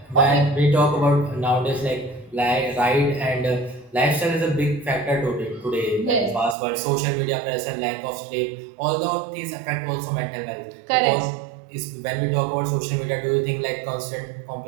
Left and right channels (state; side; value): drops out; left; at 6.6 s